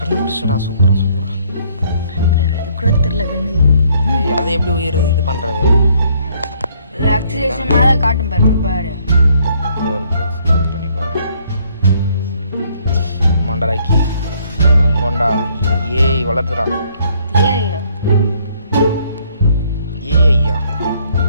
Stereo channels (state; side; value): inverted; both; correlation -0.65